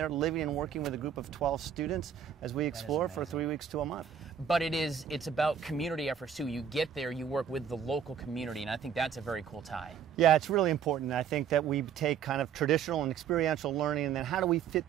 living and working with a group of 12 students as we explore for 3 weeks to a month. But it's about community efforts too. You get there, you work with the local community, and I think that's a very cool tie. Yeah, it's really important. I think that we take kind of traditional and experiential learning, and then how do we fit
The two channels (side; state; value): left; quieter; 7.9 dB